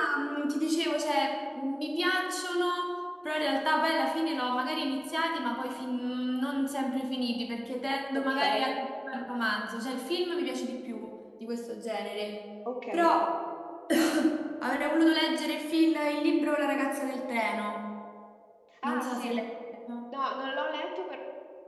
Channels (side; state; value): both; identical; correlation 1.00